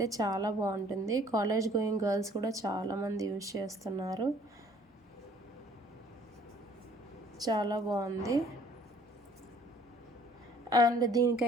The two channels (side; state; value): both; normal; correlation 0.56